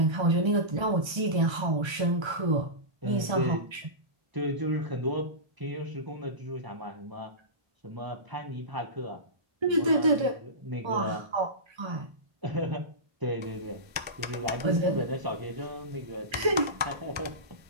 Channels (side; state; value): left; late; 1.3 ms